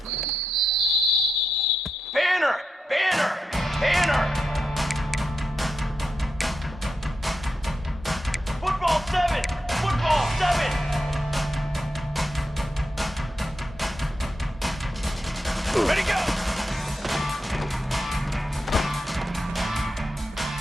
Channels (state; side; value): normal; both; correlation 0.86